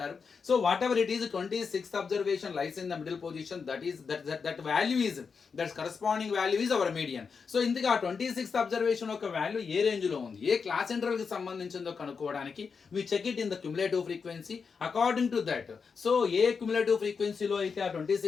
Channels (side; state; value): right; quieter; 5.6 dB